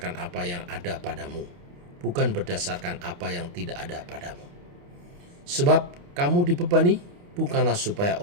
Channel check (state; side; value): late; left; 29 ms